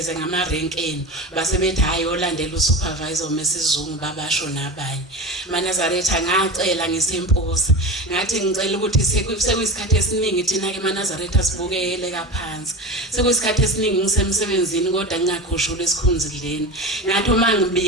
ngamarenkeni base bethi hayi olandela usupervisor mesizungu babasho nabanye. Manazaretha ngacela ngisempoza ngathi ngicela ukuthi sekuyisikhathi esiningi thina ke Manazaretha sibukele kaphansi sekuyisikhathi esiningi ngisemsebenzini kodwa ngingakhushula esikhunzileni. Ngathi uma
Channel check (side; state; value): both; normal; correlation 0.28